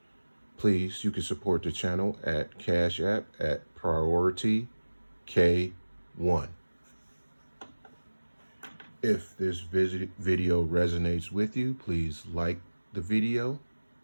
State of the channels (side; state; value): both; inverted; correlation -1.00